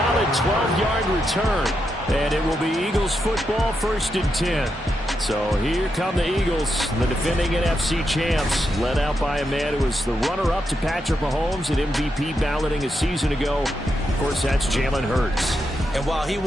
12-yard return. And it will be Eagles football, 1st and 10. So here come the Eagles, the defending NFC champs, led out by a man who was the runner-up to Patrick Mahomes at MVP balloting a season ago. Of course, that's Jalen Hurts. And while he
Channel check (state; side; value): normal; both; correlation 0.84